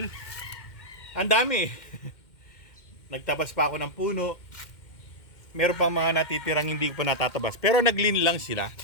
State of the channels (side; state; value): right; late; 2.1 ms